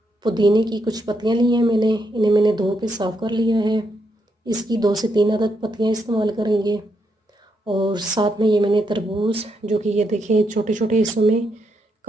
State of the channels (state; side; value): normal; both; correlation 0.79